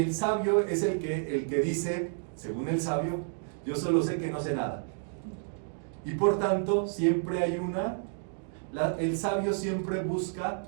el sabio es el que dice, según el sabio, yo solo sé que no sé nada. Y por tanto, siempre hay el sabio siempre busca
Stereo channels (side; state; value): left; silent; digital silence